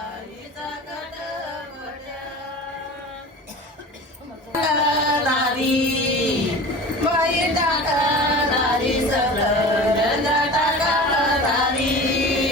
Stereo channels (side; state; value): both; normal; correlation 0.36